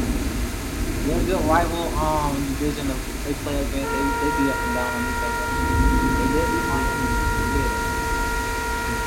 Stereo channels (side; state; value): both; identical; correlation 1.00